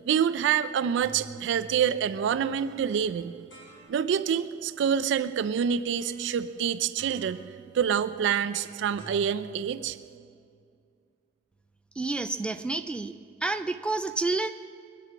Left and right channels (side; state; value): left; quieter; 6.8 dB